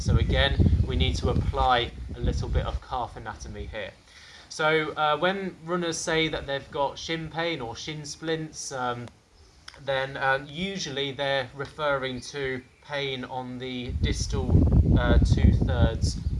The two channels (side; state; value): both; identical; correlation 1.00